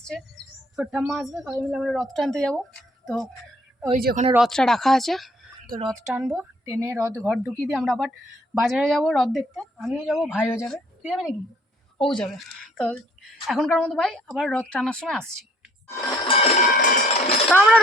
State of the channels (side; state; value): both; normal; correlation 0.61